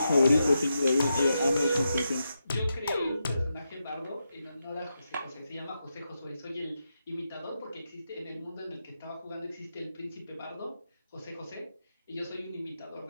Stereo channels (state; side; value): inverted; both; correlation -0.87